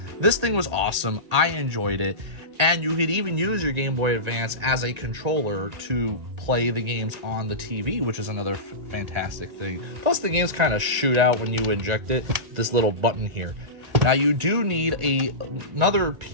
this thing was awesome. I enjoyed it. And you could even use your Game Boy Advance as a controller to play the games on the TV, which is another fantastic thing. Plus, the games kind of shoot out when you eject it, this little button here. Now, you do need another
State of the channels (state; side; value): late; left; 1.9 ms